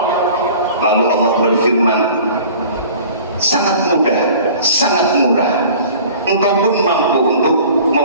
Lalu Allah berfirman, 'Sangat mudah, sangat murah. Engkau pun mampu untuk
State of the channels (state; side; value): inverted; both; correlation -0.45